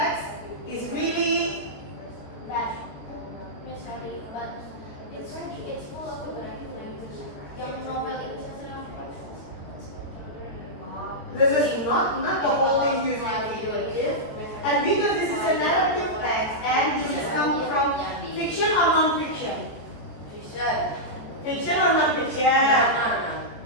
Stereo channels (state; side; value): late; right; 14 ms